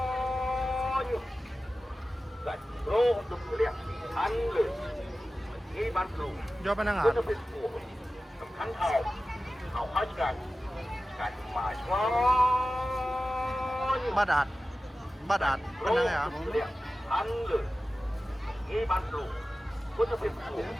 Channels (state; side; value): normal; both; correlation 0.95